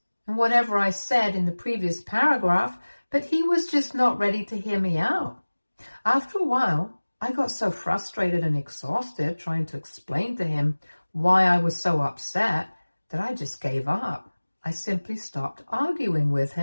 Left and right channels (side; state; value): both; inverted; correlation -1.00